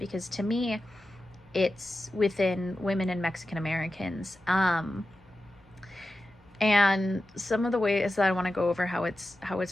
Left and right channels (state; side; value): noise; left; hum, 29 dB below the sound